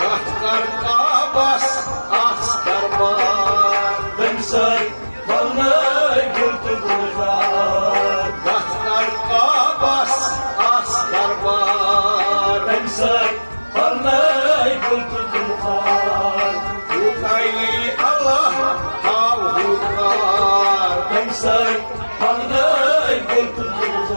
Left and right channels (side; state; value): both; inverted; correlation -1.00